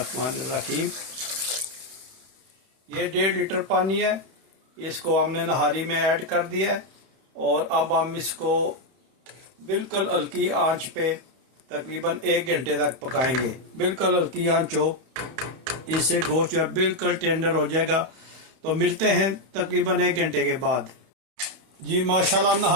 ये 1.5 लीटर पानी है, इसको हमने नहारी में ऐड कर दिया है। और अब हम इसको बिल्कुल हल्की आंच पे तकरीबन 1 घंटे तक पकाएंगे। बिल्कुल हल्की आंच हो, इससे गोश्त जो है बिल्कुल टेंडर हो जाएगा। तो मिलते हैं तकरीबन 1 घंटे के बाद। जी माशाल्लाह,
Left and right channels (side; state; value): left; late; 31 ms